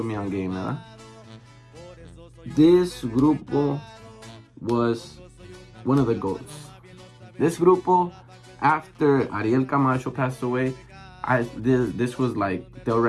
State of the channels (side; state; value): both; identical; correlation 1.00